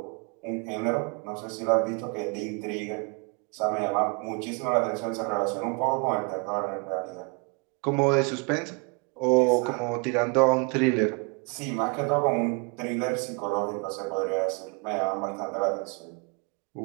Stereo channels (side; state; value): left; quieter; 34.2 dB